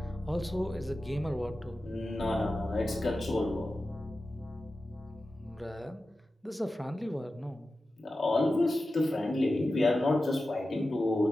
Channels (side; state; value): both; normal; correlation 0.93